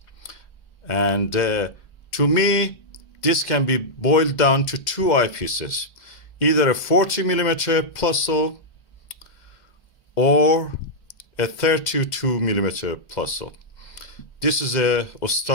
And to me, this can be boiled down to 2 eyepieces, either a 40 millimeter Plössl or a 32 millimeter Plössl. This is a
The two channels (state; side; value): late; right; 2.1 ms